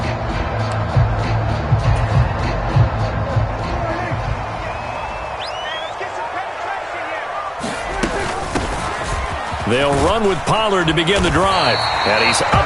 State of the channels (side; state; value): both; identical; correlation 1.00